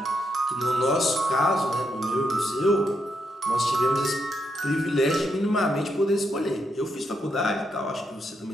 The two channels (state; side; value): normal; both; correlation 0.80